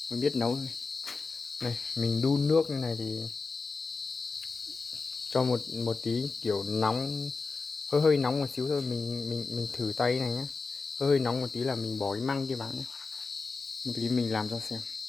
mới biết nấu thôi. Này mình đun nước như này thì cho một tí kiểu nóng, hơi nóng một xíu thôi, mình thử tay này nhé, hơi nóng một tí là mình bỏ cái măng kia vào nhé. Một tí mình làm cho xem.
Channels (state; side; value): quieter; right; 4.2 dB